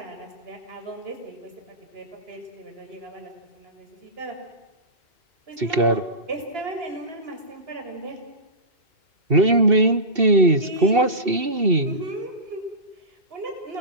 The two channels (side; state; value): left; late; 2.7 ms